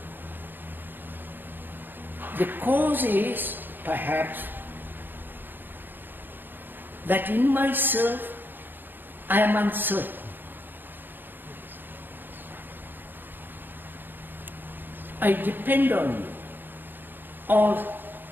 The cause is, perhaps, that in myself I am uncertain. I depend on you or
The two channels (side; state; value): left; late; 0.094 ms